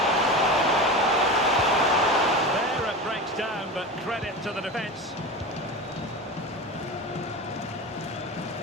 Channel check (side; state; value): both; normal; correlation 0.27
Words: There it breaks down, but credit to the defence.